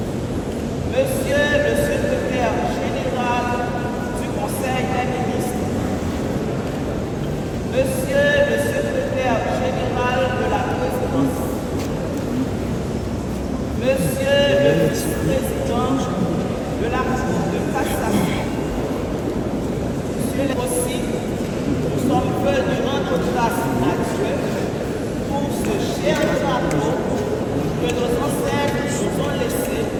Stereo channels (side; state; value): both; identical; correlation 1.00